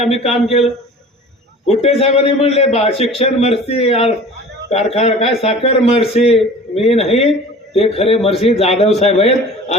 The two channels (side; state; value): both; normal; correlation 0.42